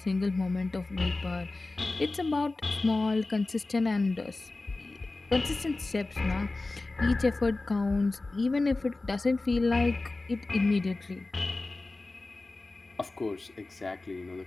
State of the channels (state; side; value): quieter; right; 3.2 dB